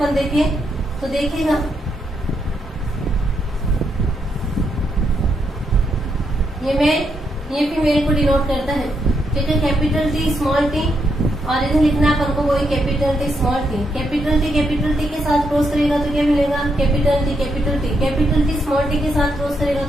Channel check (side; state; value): both; normal; correlation 0.79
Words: देखिए तो देखिएगा ये फीमेल को डिनोट करता है। ठीक है, कैपिटल टी स्मॉल टी, और इधर लिखना है अपन को वही capital T small T. Capital T के साथ क्रॉस करेगा तो क्या मिलेगा, कैपिटल टी स्मॉल टी के साथ क्रॉस करेगा